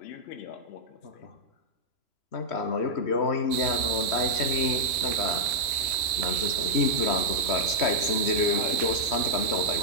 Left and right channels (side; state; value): right; late; 3.0 ms